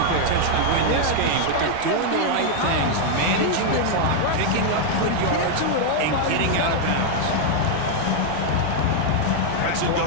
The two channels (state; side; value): different; both; correlation 0.00